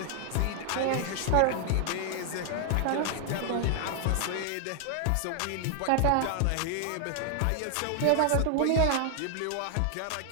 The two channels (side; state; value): both; different; correlation 0.00